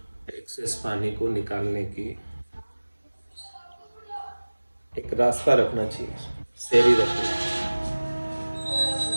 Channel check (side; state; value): both; inverted; correlation -1.00